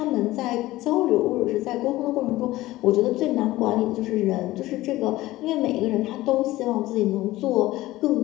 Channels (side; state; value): right; quieter; 17.3 dB